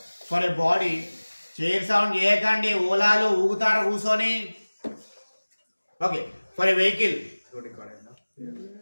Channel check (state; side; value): inverted; both; correlation -1.00